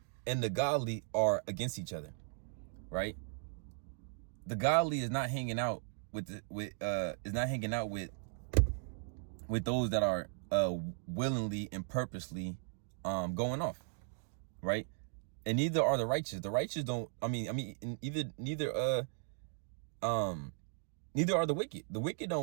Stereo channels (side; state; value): left; silent; 53 dB below the other